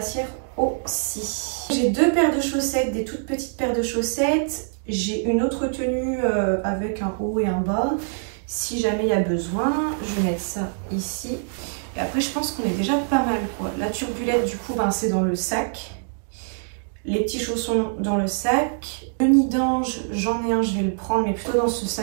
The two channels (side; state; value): left; silent; digital silence